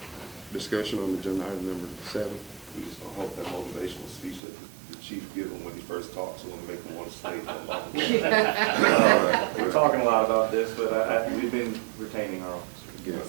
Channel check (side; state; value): left; drops out; at 4.4 s